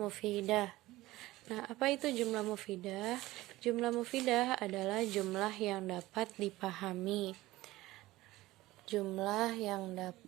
Nah, apa itu jumlah mufidah? Jumlah mufidah adalah jumlah yang dapat dipahami. Jumlah yang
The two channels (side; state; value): left; quieter; 17.9 dB